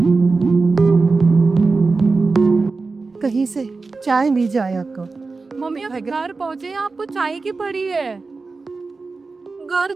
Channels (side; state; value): left; quieter; 4.0 dB